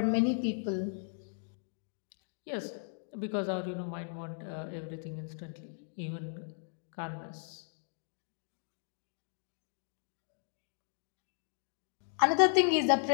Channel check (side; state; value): right; silent; digital silence